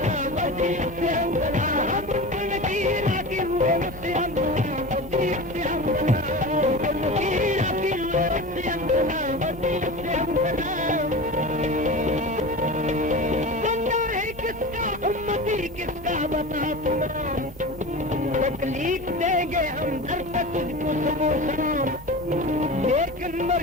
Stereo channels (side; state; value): both; normal; correlation 0.30